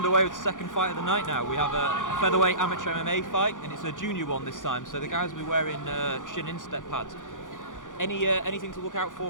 with the second fight of the night now. We have a featherweight amateur MMA fight, and it's a junior one this time. So the guys will be wearing shin instep pads. Anything to look out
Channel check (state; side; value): late; right; 0.88 ms